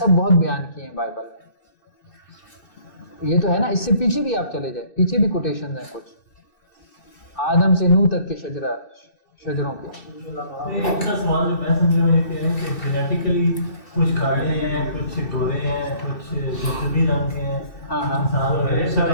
بہت بیان کیے ہیں بائبل میں. یہ تو ہے نا, اس سے پیچھے بھی آپ چلے جائیں, پیچھے بھی کوٹیشن ہیں کچھ, آدم سے نوح تک کے شجروں کے. ایک کا سوال جو میں سمجھ رہا ہوں یہ کہہ رہے ہیں کہ جینیٹیکلی کچھ کالے ہیں, کچھ گورے ہیں, کچھ جسمی رنگ کے ہیں.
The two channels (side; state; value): right; late; 2.6 ms